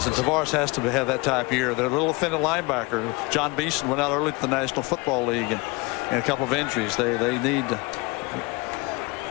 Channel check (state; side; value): quieter; right; 25.4 dB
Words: and Tavares has to have that type of year. They're a little offended linebacker. John Beeson went out early to the National Football League and a couple of injuries. They need to.